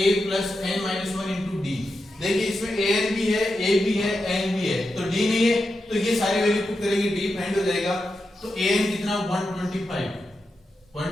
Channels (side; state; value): both; normal; correlation 0.88